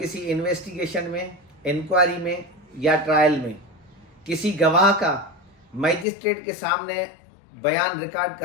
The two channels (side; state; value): right; drops out; at 6.1 s